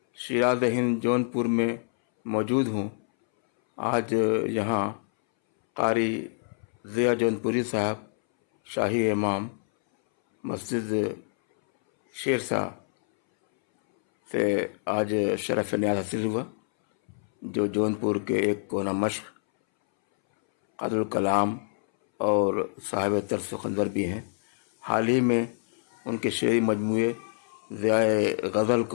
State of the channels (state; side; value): silent; right; 60 dB below the other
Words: شیراز ہند جونپور میں موجود ہوں. آج یہاں قاری ضیاء جونپوری صاحب شاہی امام مسجد شیرشاہ سے آج شرف نیاز حاصل ہوا، جو جونپور کے ایک کونا مشق، قادر الکلام اور صاحب طرز و خنجر بھی ہیں. حال ہی میں ان کے شعری مجموعے ضیاء غزل